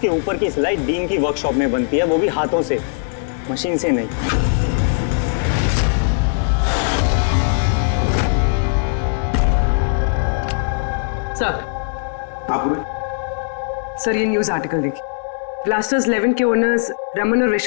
ऊपर की सिलाई डीन की वर्कशॉप में बनती है, वो भी हाथों से, मशीन से नहीं। सर ये न्यूज आर्टिकल देखिए। ब्लास्टर्स 11 के ओनर्स रमन और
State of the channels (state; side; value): silent; right; digital silence